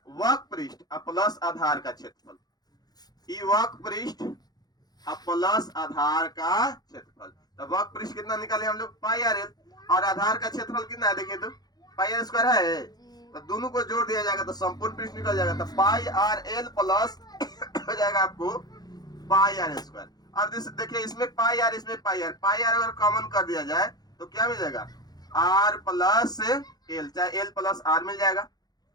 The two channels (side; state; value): right; late; 0.19 ms